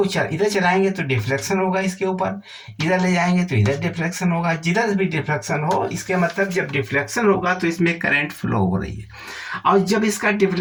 इधर चलाएंगे तो डिफ्लेक्शन होगा इसके ऊपर, इधर ले जाएंगे तो इधर डिफ्लेक्शन होगा, जिधर भी डिफ्लेक्शन हो इसके मतलब जब डिफ्लेक्शन होगा तो इसमें करंट फ्लो हो रही है। और जब इसका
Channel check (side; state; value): both; identical; correlation 1.00